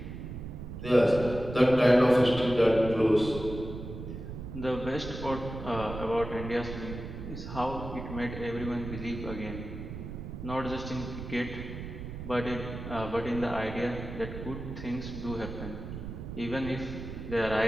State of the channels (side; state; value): right; noise; rumble, 8 dB below the sound